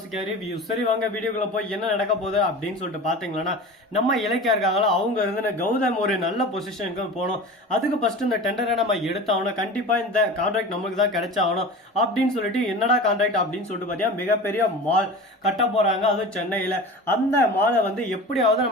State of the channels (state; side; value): normal; both; correlation 0.34